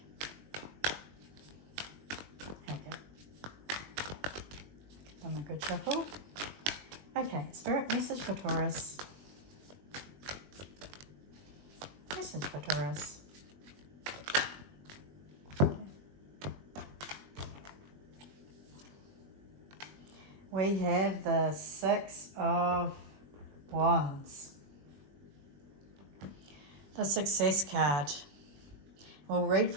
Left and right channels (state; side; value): late; left; 21 ms